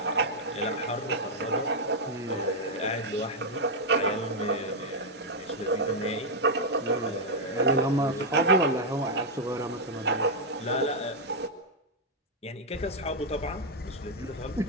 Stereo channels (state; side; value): normal; both; correlation -0.01